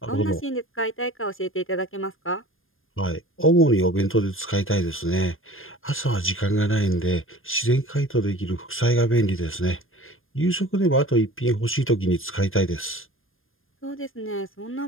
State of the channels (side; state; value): right; late; 0.60 ms